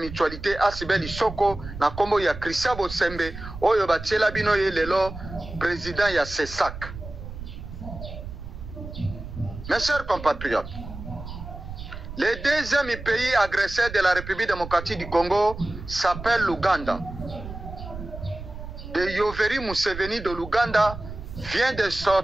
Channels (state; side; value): noise; right; rumble, 11 dB below the sound